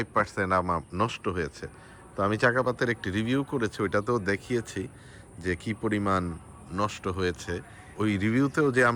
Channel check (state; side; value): identical; both; correlation 1.00